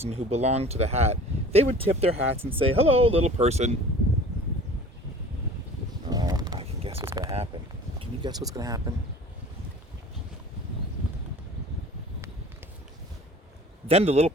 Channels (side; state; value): both; normal; correlation 0.45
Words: who belonged to the hat, they would tip their hats and say, "Hello, little person." Oh, I can guess what's going to happen. Can you guess what's going to happen? Then the little